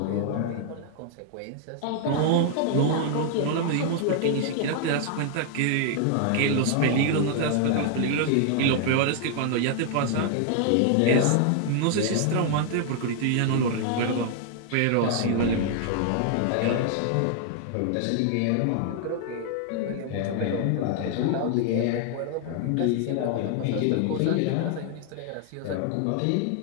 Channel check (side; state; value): both; different; correlation 0.00